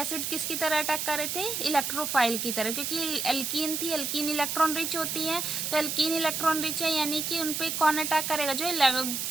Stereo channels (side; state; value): right; noise; hiss, 2 dB below the sound